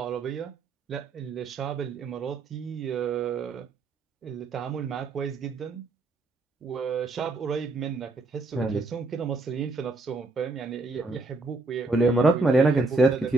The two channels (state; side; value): quieter; left; 3.5 dB